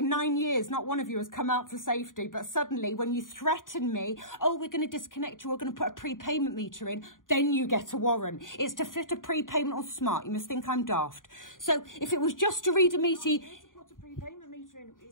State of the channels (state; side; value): late; right; 0.89 ms